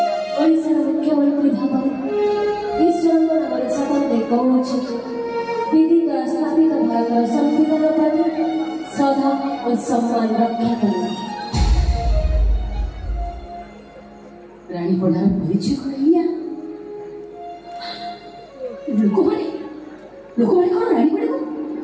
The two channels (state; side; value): identical; both; correlation 1.00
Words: ଓଡ଼ିଶାର ମୁଖ୍ୟମନ୍ତ୍ରୀ ଭାବରେ ଈଶ୍ୱରଙ୍କ ନାମରେ ଶପଥ ଦେଇ କହୁଛି, ବିଧି ଦ୍ୱାରା ସ୍ଥାପିତ ଭାରତର ସମ୍ବିଧାନ ପ୍ରତି ଶ୍ରଦ୍ଧା ଓ ସମ୍ମାନ ରକ୍ଷା କରିବ। ରାଣୀପଡ଼ାର ପରିଚୟ କଣ ଏଇଆ? ଲୋକମାନେ କଣ ରାଣୀପଡ଼ାକୁ